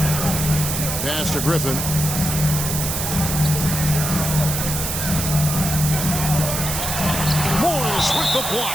Pass to Griffin. Morris with the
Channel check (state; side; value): noise; right; hiss, 2 dB below the sound